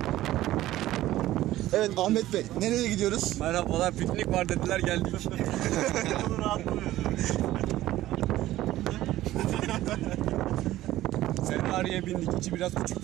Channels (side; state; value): left; quieter; 15.1 dB